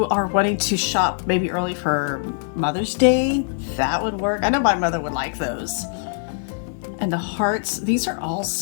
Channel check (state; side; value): silent; right; 61 dB below the other